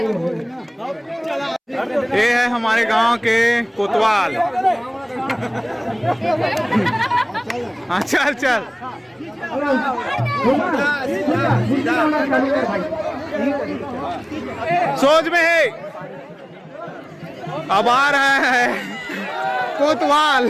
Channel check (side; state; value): both; identical; correlation 1.00